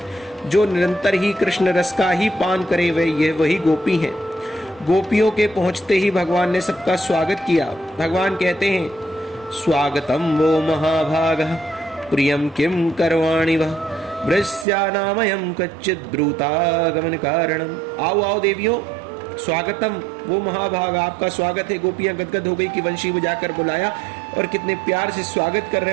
जो निरंतर ही कृष्ण रस का ही पान करे वही गोपी है। गोपियों के पहुंचते ही भगवान ने सबका स्वागत किया। भगवान कहते हैं, स्वागतम वो महाभागः प्रियं किं करवाणि वः वृष्यानामयं कच्चित् ब्रूतागमन कारणम। आओ आओ देवियों, स्वागतम। वो महाभाग आपका स्वागत है। गोपियां गदगद हो गई कि वंशी बजाकर बुलाया और कितने प्यार से स्वागत कर रहे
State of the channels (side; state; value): left; drops out; at 14.7 s